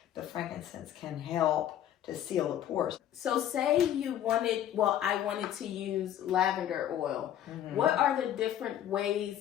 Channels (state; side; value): quieter; right; 11.0 dB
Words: the frankincense can help to seal the pores. So say I wanted to use lavender oil. What are the different ways